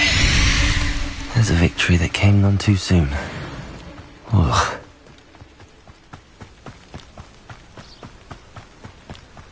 There's a victory that came none too soon. Ugh.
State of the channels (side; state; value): both; identical; correlation 1.00